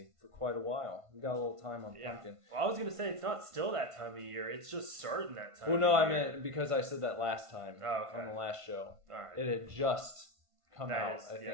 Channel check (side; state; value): left; late; 1.5 ms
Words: for quite a while. We got a little time on pumpkin. Well, I was going to say, it's not still that time of year. It's just starting that time of year. I meant because I said that last time on the last show. All right. It had just come out, I